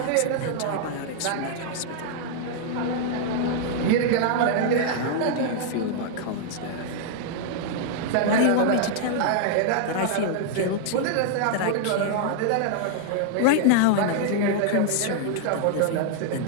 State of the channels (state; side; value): different; both; correlation -0.01